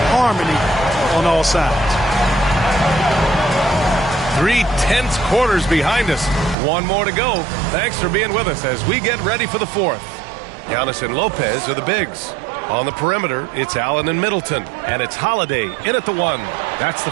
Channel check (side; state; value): left; drops out; at 6.6 s